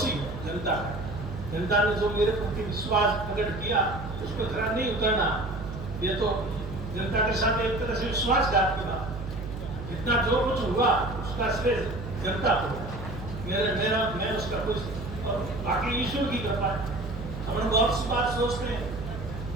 हूँ जनता का। जनता ने जो मेरे प्रति विश्वास प्रकट किया उस पर खरा नहीं उतरना, ये तो जनता के साथ एक तरह से विश्वासघात की बात। इतना जो कुछ हुआ उसका श्रेय जनता को, मैं उसका कुछ, और बाकी ईश्वर की कृपा है। हम लोग बहुत सी बात सोचते हैं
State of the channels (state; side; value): noise; right; hum, 9 dB below the sound